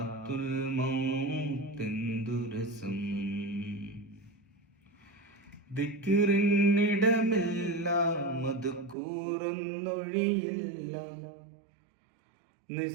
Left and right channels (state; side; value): drops out; left; at 9.0 s